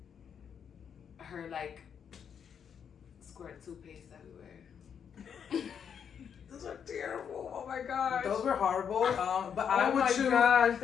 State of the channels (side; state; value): right; quieter; 7.6 dB